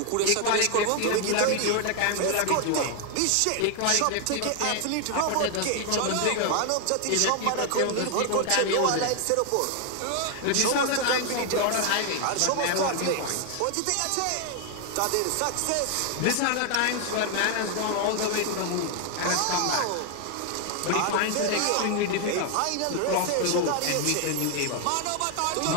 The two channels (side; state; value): both; different; correlation 0.00